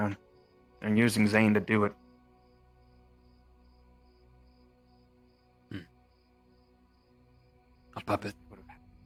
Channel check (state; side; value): identical; both; correlation 1.00